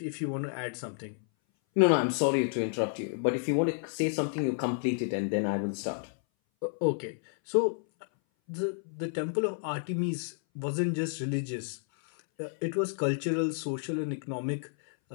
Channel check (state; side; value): silent; right; 57 dB below the other